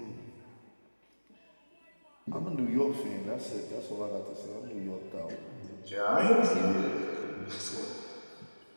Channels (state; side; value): inverted; both; correlation -1.00